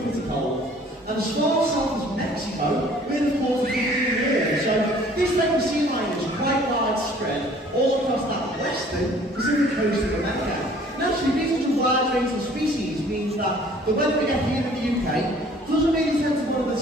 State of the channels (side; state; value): both; normal; correlation 0.54